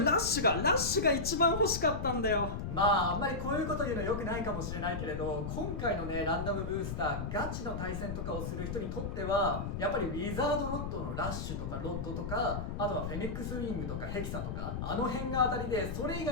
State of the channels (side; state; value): left; noise; rumble, 4 dB below the sound